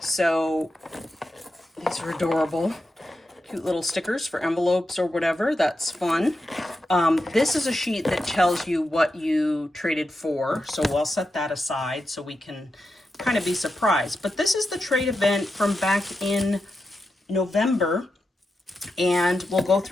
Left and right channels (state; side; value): normal; both; correlation 0.88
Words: So these are adorable. Cute little stickers for envelopes or whatever. That's fun. This is a sheet that tells you what you traded for. So we'll set that aside so we can kind of be surprised. But this is the trade event from back in November. And we'll go